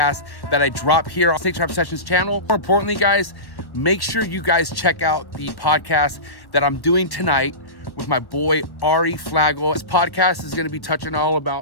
that I drop here on Snake Trap Sessions channel. More importantly, guys, make sure you guys check out the podcast that I'm doing tonight with my boy Ari Flagel. This podcast is going to be touching all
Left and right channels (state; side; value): late; right; 1.3 ms